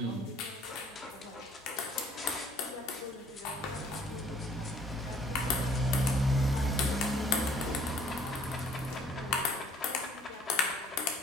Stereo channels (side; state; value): both; normal; correlation 0.57